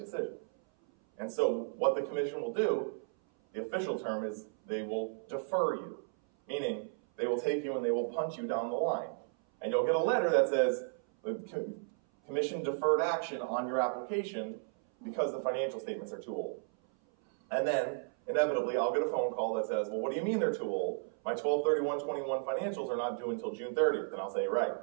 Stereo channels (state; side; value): silent; left; 55 dB below the other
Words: And so what the commission will do, the official term is they will defer you, meaning they will take you and they will punch you down the line. And you'll get a letter that says, the commission deferred action on your application because the financial statements are too old. And then, inevitably, I'll get a phone call that says, well, what do you mean they're too old? My 12/31/21 financials are not due until June 30th. And I'll say, right.